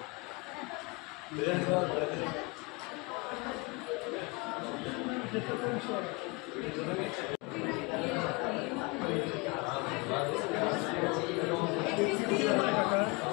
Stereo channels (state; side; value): quieter; right; 26.9 dB